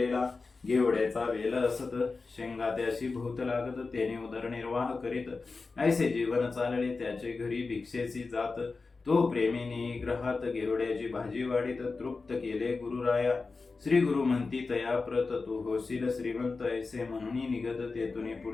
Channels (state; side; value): quieter; right; 4.1 dB